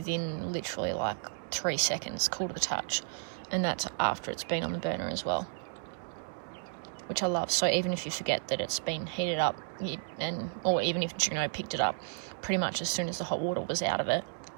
literally like 3 seconds, cool to the touch, and that's after it's been on the burner as well, which I love. So even if you forget that it's been heated up, or even if you picked it up, pretty much as soon as the hot water was out of it,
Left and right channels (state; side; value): silent; left; digital silence